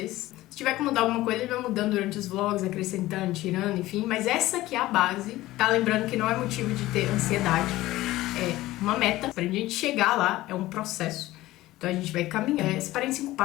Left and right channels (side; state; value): right; quieter; 17.0 dB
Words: Se tiver que mudar alguma coisa, ele vai mudando durante os vlogs, acrescentando, tirando, enfim. Mas essa aqui é a base, tá? Lembrando que não é motivo de ter ansiedade, é uma meta. Pra gente chegar lá, é um processo. Então a gente vai caminhar. Separei em 5